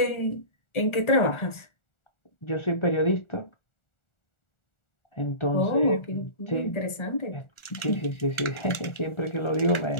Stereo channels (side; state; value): right; late; 1.4 ms